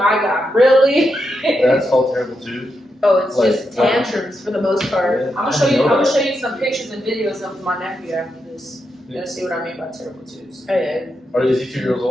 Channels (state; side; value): normal; both; correlation 0.84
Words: god, really? That's called terrible too. Oh, it's Like, just tantrums for the most part. I'm gonna show you. I'm gonna show you some pictures and videos of my nephew after this. You're gonna see what I mean by terrible twos. Oh yeah. Is he 2 years